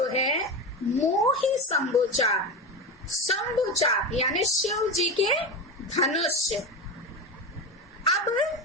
है मोही शंभुचाप, शंभुचाप यानी शिव जी के धनुष। अब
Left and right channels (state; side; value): normal; both; correlation 0.21